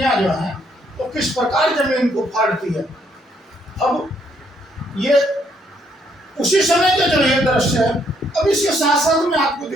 जो हैं तो किस प्रकार जमीन को फाड़ती है। अब ये उसी समय का जो ये दृश्य है। अब इसके साथ साथ मैं आपको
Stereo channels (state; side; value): normal; both; correlation 0.70